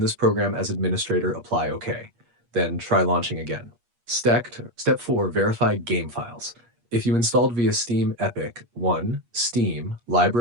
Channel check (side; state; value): left; late; 8.4 ms